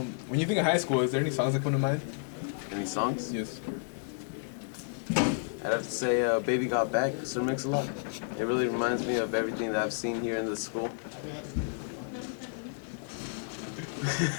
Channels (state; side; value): silent; right; digital silence